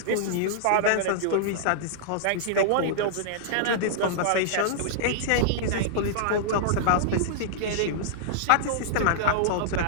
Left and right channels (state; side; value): different; both; correlation -0.02